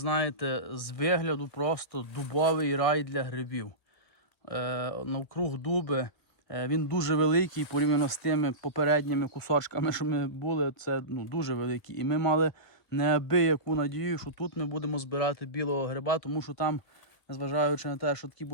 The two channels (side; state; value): right; late; 2.0 ms